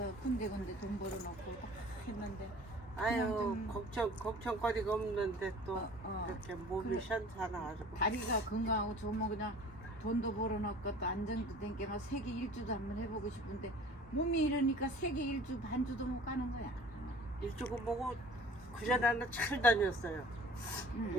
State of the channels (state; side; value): normal; both; correlation 0.46